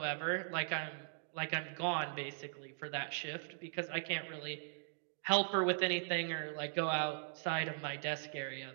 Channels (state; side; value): silent; left; digital silence